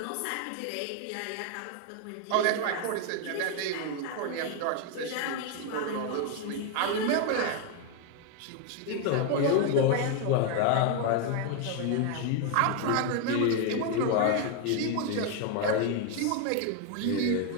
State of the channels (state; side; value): different; both; correlation 0.01